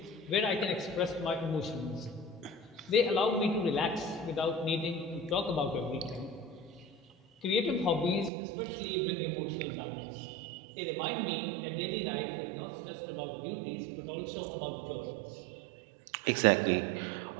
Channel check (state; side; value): drops out; left; at 8.3 s